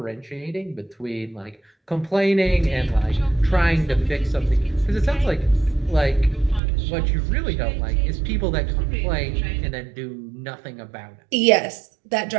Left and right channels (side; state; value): left; drops out; at 6.6 s